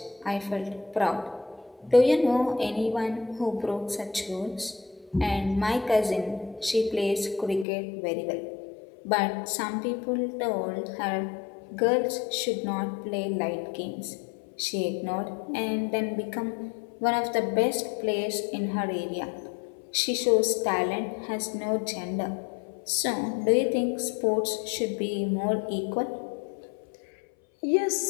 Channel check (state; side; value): drops out; right; at 7.7 s